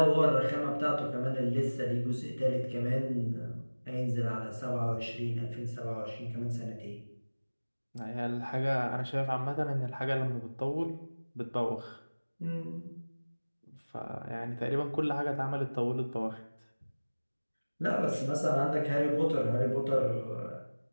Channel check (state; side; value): inverted; both; correlation -1.00